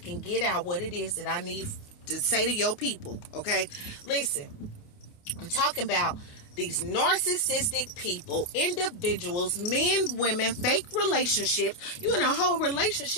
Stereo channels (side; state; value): right; late; 28 ms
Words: get out what it is that I need to say to your people, okay? Listen, I'm talking about these narcissistic people, individuals, men, women, fake relationships. You in a whole